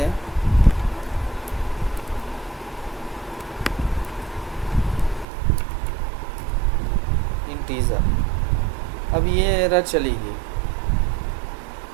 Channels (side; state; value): left; drops out; at 5.2 s